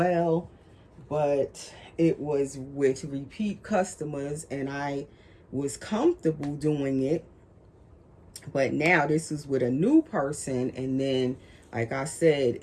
but it was with repeat customers, and I was comfortable doing it. But now this is with a new person, and then, like I said,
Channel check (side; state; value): both; identical; correlation 1.00